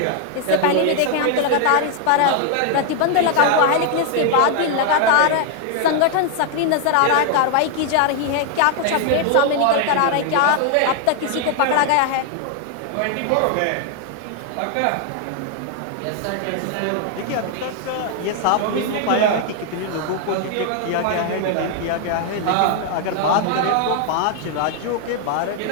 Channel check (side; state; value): both; different; correlation 0.00